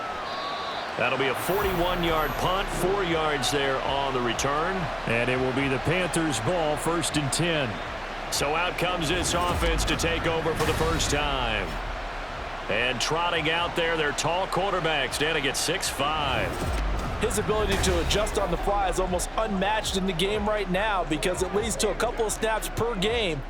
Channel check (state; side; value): identical; both; correlation 1.00